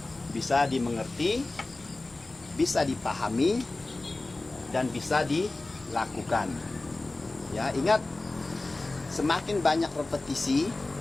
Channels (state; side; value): quieter; right; 3.0 dB